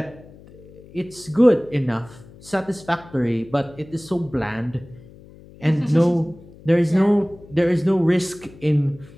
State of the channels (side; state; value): left; noise; hum, 22 dB below the sound